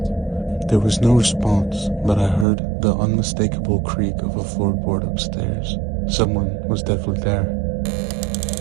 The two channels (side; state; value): left; drops out; at 2.5 s